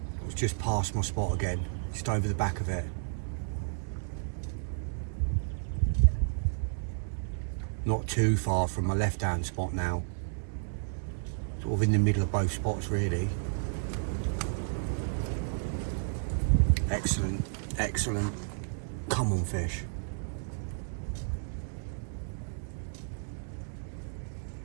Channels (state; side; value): silent; left; 56 dB below the other